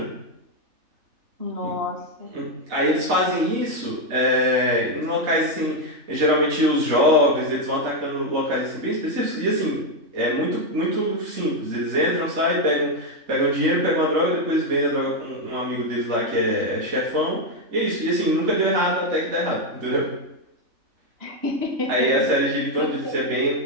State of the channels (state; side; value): late; left; 3.3 ms